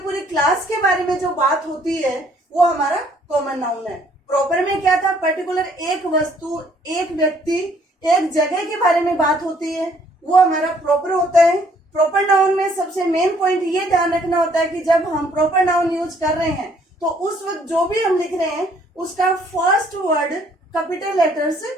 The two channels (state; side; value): normal; both; correlation 0.63